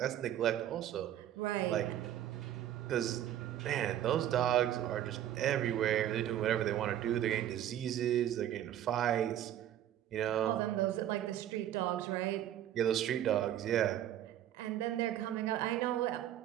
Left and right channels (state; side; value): quieter; left; 11.6 dB